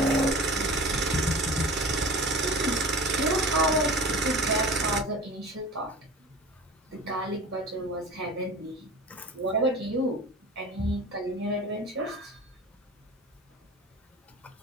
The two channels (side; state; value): both; normal; correlation 0.37